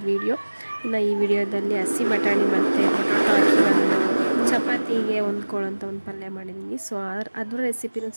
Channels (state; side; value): inverted; both; correlation -1.00